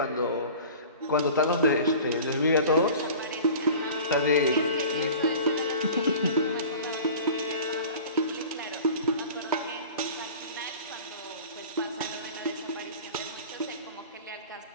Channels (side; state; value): both; inverted; correlation -0.40